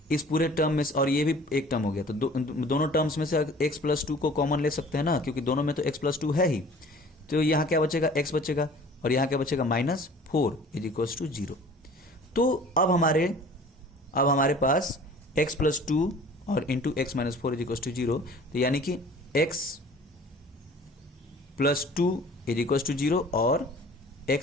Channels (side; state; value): both; normal; correlation 0.48